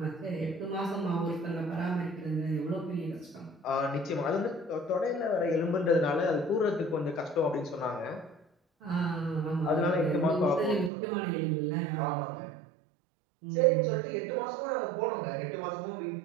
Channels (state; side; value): drops out; left; at 10.9 s